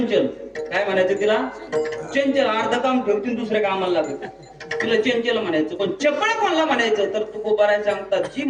काय म्हणायचं तिला? चंचल. अर्ध काम ठेवतील दुसऱ्या कामाला लागत, तिला चंचल म्हणायचं. पण चपळ कोणाला म्हणायचं तर तुकोबाराय सांगतात, जी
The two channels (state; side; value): identical; both; correlation 1.00